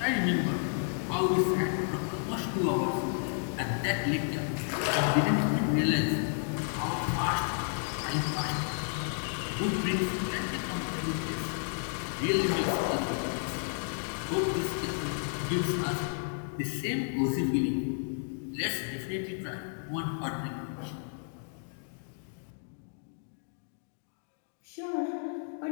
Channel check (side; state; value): right; silent; 57 dB below the other